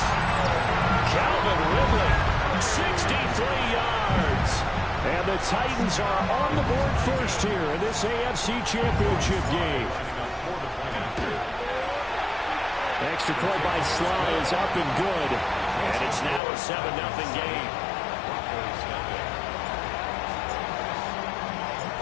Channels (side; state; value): right; drops out; at 16.4 s